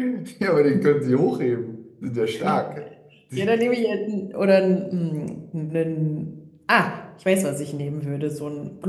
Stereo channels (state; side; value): identical; both; correlation 1.00